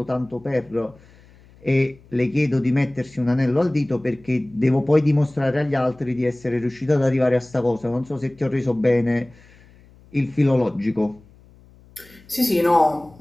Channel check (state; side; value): noise; left; hum, 26 dB below the sound